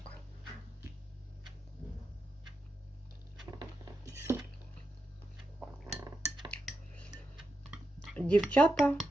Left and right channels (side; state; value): both; normal; correlation 0.87